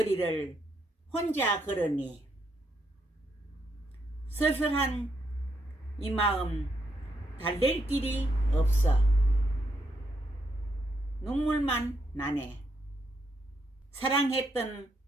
혼자 걸으니 쓸쓸한 이 마음 달랠 길이 없어. 눈물만 나네. 사랑했던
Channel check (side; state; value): both; normal; correlation 0.78